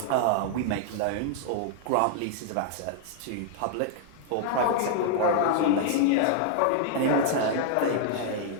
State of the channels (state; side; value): different; both; correlation -0.01